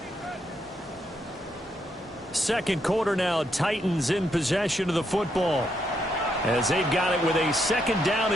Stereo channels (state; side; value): normal; both; correlation 0.78